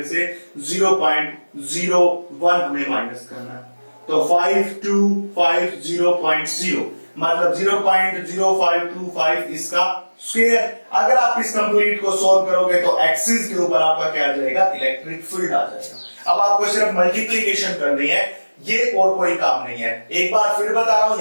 से 0.01 हमें माइनस करना है तो 5250.0 मतलब 0.0525 इसका स्क्वायर। अगर आप इस कंप्लीट को सोल्व करोगे तो एक्सिस के ऊपर आपका क्या आ जाएगा इलेक्ट्रिक फील्ड आ जाएगा। अब आपको सिर्फ मल्टीप्लीकेशन करनी है, ये और कोई काम नहीं है। एक बार फिर बता रहा हूं,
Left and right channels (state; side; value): inverted; both; correlation -1.00